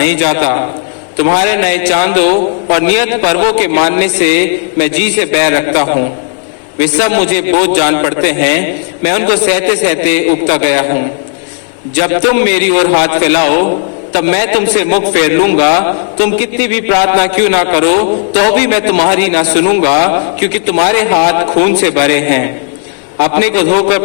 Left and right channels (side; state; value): right; silent; 62 dB below the other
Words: जाता। तुम्हारे नए चांदों और नियत पर्वों के मानने से मैं जी से बैर रखता हूँ। वे सब मुझे बोझ जान पड़ते हैं, मैं उनको सहते सहते उगता गया हूँ। जब तुम मेरी ओर हाथ फैलाओ तब मैं तुमसे मुख फेर लूंगा। तुम कितनी भी प्रार्थना क्यों ना करो तो भी मैं तुम्हारी ना सुनूंगा, क्योंकि तुम्हारे हाथ खून से भरे हैं। अपने को धोकर